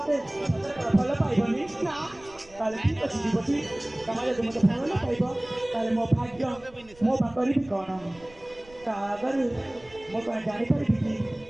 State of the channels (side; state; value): right; noise; rumble, 24 dB below the sound